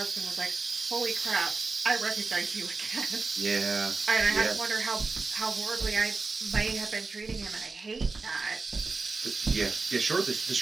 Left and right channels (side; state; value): left; quieter; 4.0 dB